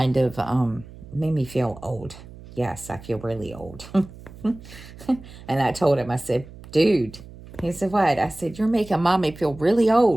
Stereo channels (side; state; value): right; noise; hum, 18 dB below the sound